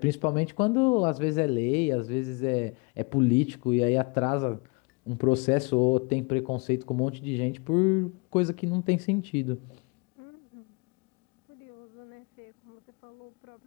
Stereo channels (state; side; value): quieter; right; 30.2 dB